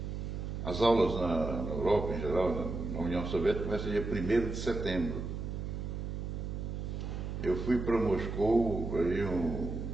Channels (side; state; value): right; noise; hum, 5 dB below the sound